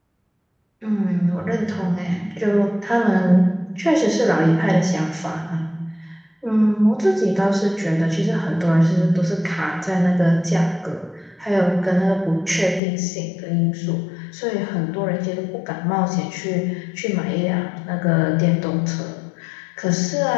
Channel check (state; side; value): drops out; right; at 12.8 s